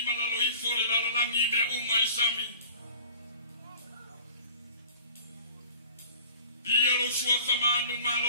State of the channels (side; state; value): both; inverted; correlation -0.45